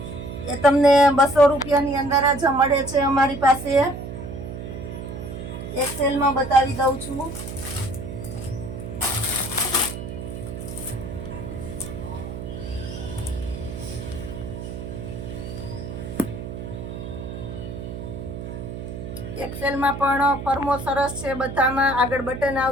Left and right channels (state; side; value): noise; right; hum, 8 dB below the sound